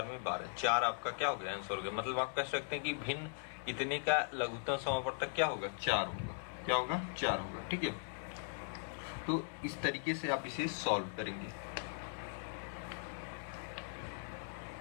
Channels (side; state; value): right; silent; 52 dB below the other